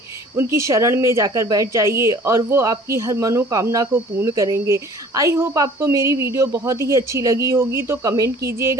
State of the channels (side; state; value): both; normal; correlation 0.50